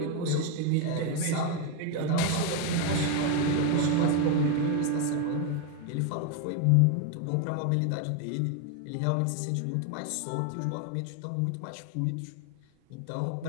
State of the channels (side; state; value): both; different; correlation 0.02